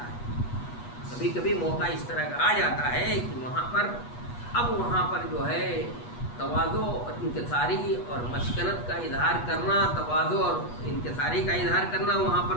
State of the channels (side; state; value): right; late; 8.3 ms